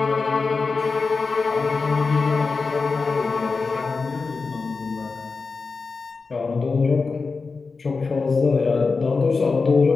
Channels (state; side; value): quieter; right; 4.4 dB